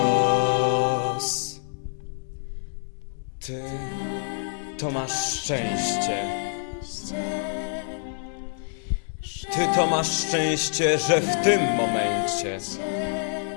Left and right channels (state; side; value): silent; right; digital silence